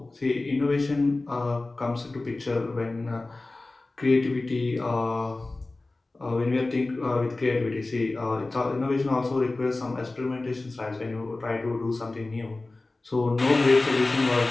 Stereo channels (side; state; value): right; quieter; 3.1 dB